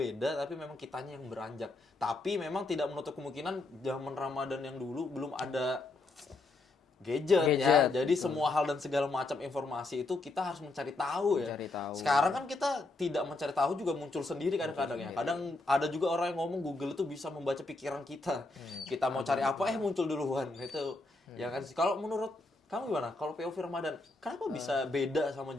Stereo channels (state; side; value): quieter; right; 3.1 dB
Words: tapi memang kitanya yang beranjak. Tapi memang tidak menutup kemungkinan zaman Ramadan yang dulu belum ada gadget ya. Jadi semua hal dan segala macam informasi itu kita harus mencari tahu ya. Mencari tahu. Sekarang kan kita tidak mencari tahu juga muncul sendiri kadang-kadang ya. Kadang ada juga orang yang ngomong Google itu bisa membaca pikiran kita. Kita mau cari apa muncul duluan. Itu ya kan sih. Kalau menurut kamu gimana? Kalau POV Ramadan, kenapa bisa beda sama